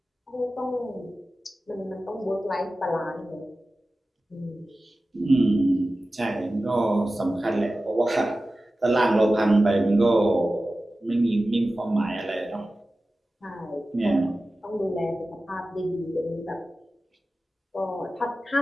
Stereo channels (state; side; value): normal; both; correlation 0.95